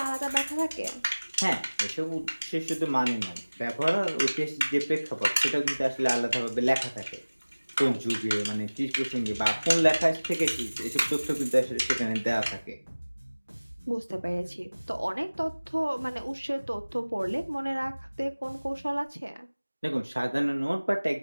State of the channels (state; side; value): inverted; both; correlation -1.00